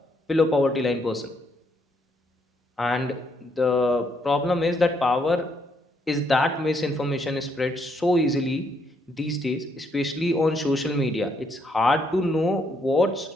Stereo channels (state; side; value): normal; both; correlation 0.73